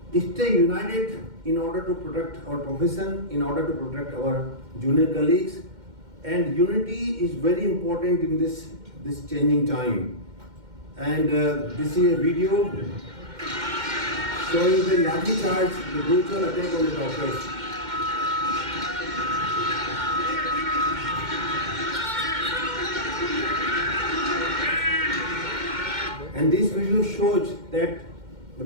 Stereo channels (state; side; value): late; left; 2.1 ms